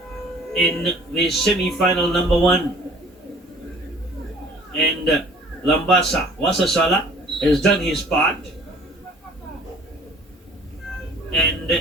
in the semi-final number 1. And Lambasa, Wasasala has done his part and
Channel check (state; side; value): normal; both; correlation 0.51